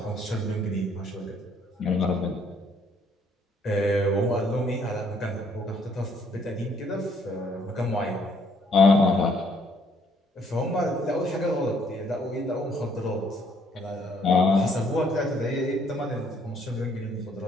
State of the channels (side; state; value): both; normal; correlation 0.66